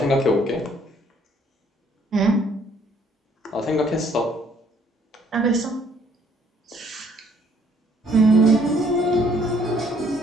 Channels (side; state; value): both; normal; correlation 0.64